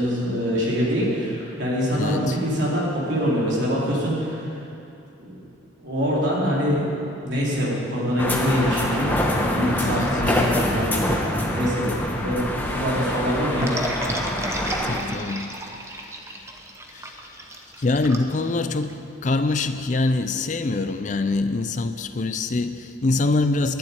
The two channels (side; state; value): both; normal; correlation 0.57